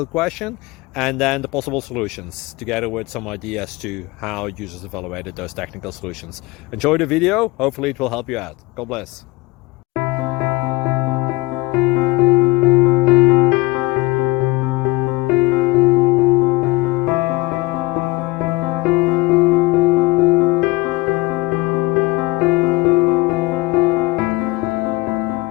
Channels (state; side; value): quieter; right; 22.3 dB